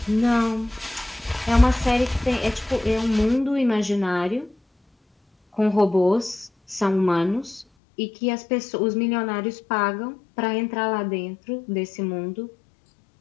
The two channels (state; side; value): drops out; right; at 7.7 s